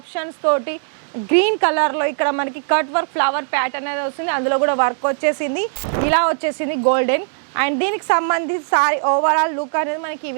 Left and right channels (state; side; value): silent; left; digital silence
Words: తోటి గ్రీన్ కలర్లో ఇక్కడ మనకి కట్ వర్క్ ఫ్లవర్ ప్యాటర్న్ అనేది వస్తుంది. అందులో కూడా వర్క్ వచ్చేసింది, ఇలా వచ్చేసింది గోల్డెన్. అండ్ దీనికి సంబంధించి సారీ ఓవరాల్ లుక్ అనేది మనకి ఈ